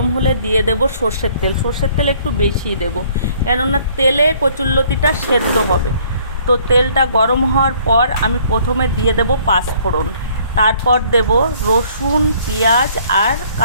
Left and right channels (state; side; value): inverted; both; correlation -0.59